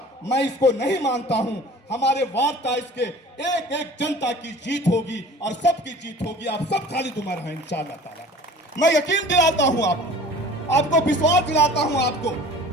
मैं इसको नहीं मानता हूं। हमारे वार्ड 23 के एक एक जनता की जीत होगी और सबकी जीत होगी। आप सब खालिद उमर हैं इंशाअल्लाह ताला। मैं यकीन दिलाता हूं आपको विश्वास दिलाता हूं आपको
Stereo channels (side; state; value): both; normal; correlation 0.44